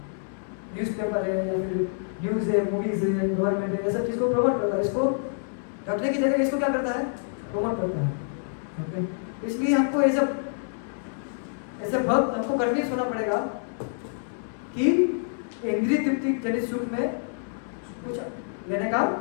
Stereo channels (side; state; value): right; silent; 60 dB below the other